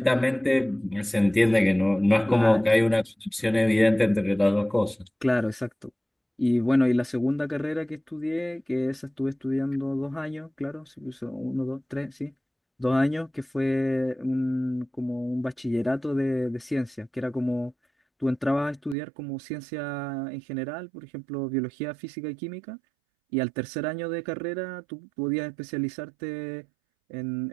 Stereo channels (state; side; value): drops out; left; at 18.9 s